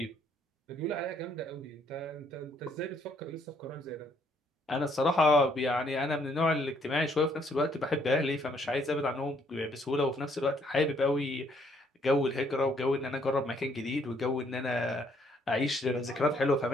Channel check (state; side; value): normal; both; correlation 0.68